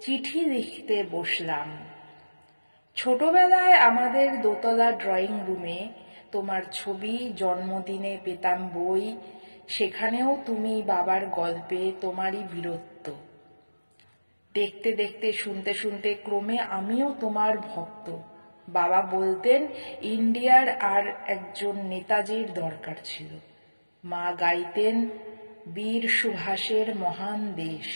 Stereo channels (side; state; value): both; inverted; correlation -1.00